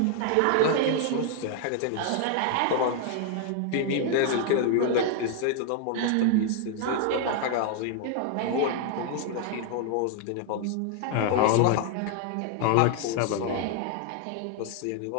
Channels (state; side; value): different; both; correlation 0.00